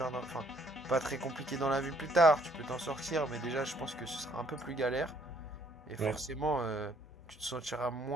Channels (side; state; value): both; normal; correlation 0.65